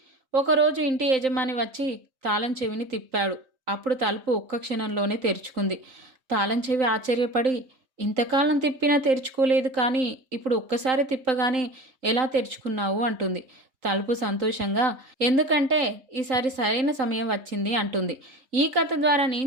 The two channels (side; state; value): left; late; 3.9 ms